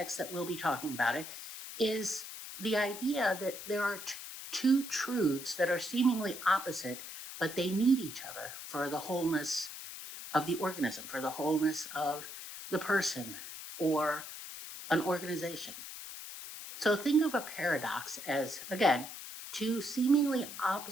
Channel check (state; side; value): noise; left; hiss, 10 dB below the sound